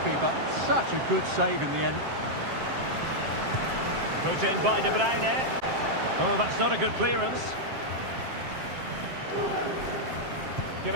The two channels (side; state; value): left; late; 7.6 ms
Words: Such a good save in the end. Put in by De Bruyne. Oh, that's not a good clearance.